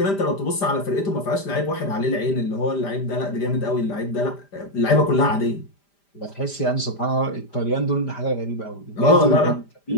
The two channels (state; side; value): late; right; 5.0 ms